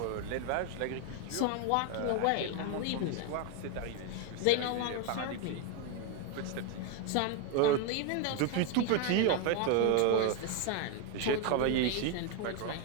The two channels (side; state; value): both; different; correlation 0.01